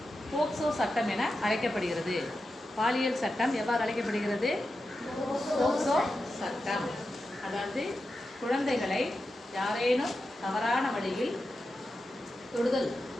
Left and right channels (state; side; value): normal; both; correlation 0.90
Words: போக்சோ சட்டம் என அழைக்கப்படுகிறது. பாலியல் சட்டம் எவ்வாறு அழைக்கப்படுகிறது? போக்சோ சட்டம். அதாவது குழந்தைகளை யாரேனும் தவறான வழியில் தொடுதல்